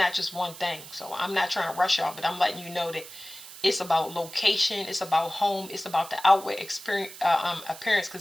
just one thing. So I'm not trying to rush y'all, but I'm letting you know that It's about location. It's about home. It's about the outward experience, appearance.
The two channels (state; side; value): noise; right; hiss, 15 dB below the sound